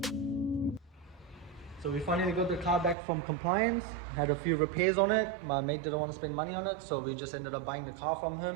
So we finally got the car back from compliance, had a few repairs on it. My mate didn't want to spend money on it, so we just ended up buying the car from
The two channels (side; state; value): left; drops out; at 3.0 s